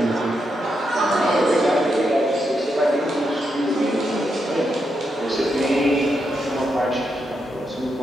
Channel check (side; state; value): both; normal; correlation 0.83